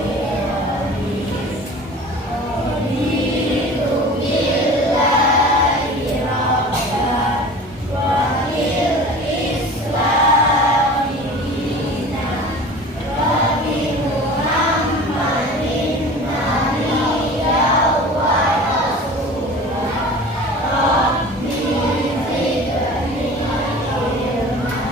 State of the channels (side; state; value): both; normal; correlation 0.40